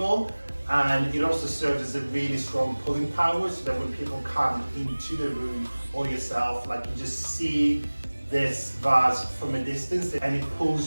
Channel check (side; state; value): both; inverted; correlation -1.00